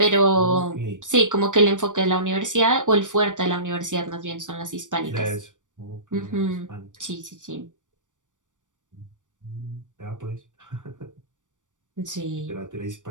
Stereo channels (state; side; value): late; left; 0.87 ms